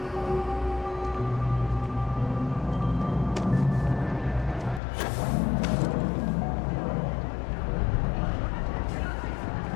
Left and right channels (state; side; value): drops out; right; at 4.8 s